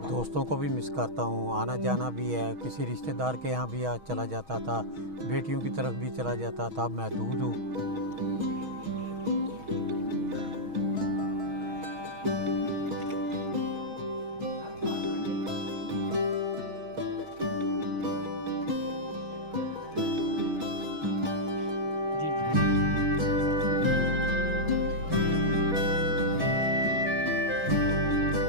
दोस्तों को भी मिस करता हूँ, आना जाना भी है। किसी रिश्तेदार के यहाँ भी चला जाता था, बेटियों की तरफ भी चला जाता था। अब मैं दूर हूँ।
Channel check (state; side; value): late; left; 6.3 ms